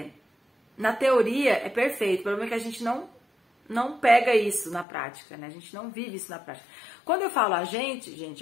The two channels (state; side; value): drops out; right; at 4.9 s